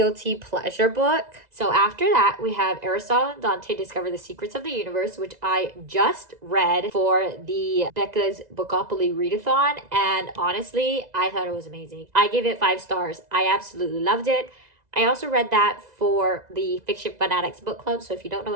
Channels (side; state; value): left; late; 2.0 ms